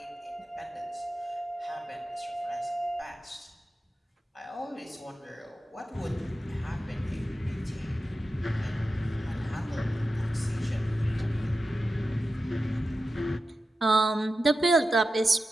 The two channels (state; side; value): normal; both; correlation 0.91